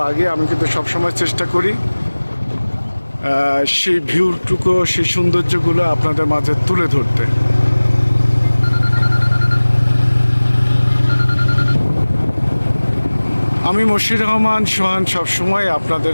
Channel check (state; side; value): inverted; both; correlation -1.00